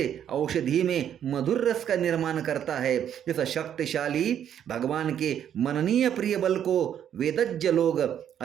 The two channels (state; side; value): quieter; left; 9.6 dB